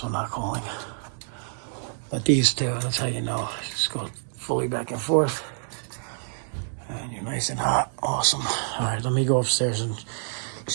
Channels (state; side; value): silent; left; digital silence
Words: not calling. But these two, that's how you know. Just go fully back and forth. And you're nice and hot. Awesome. All right, let me go upstairs and